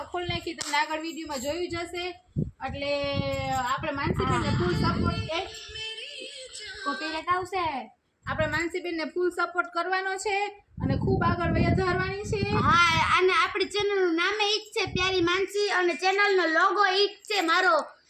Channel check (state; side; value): identical; both; correlation 1.00